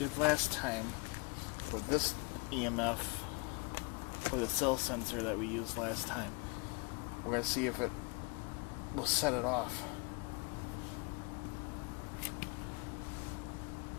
last time for this EMF, for the cell sensor that we used last time. We're going to see if it will set it off.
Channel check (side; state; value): right; quieter; 30.3 dB